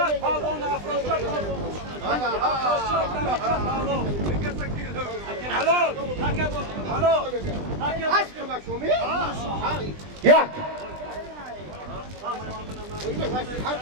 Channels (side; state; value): left; late; 20 ms